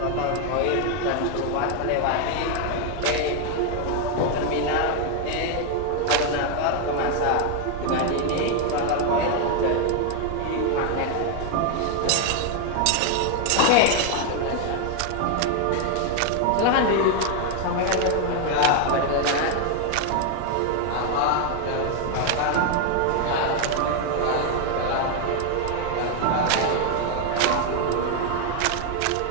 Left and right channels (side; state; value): both; different; correlation 0.01